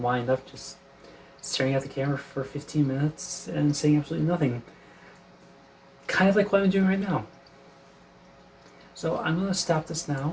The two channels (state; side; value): identical; both; correlation 1.00